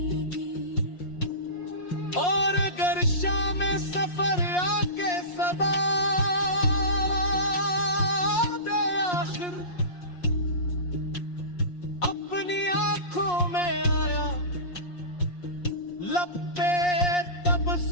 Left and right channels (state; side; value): late; right; 5.6 ms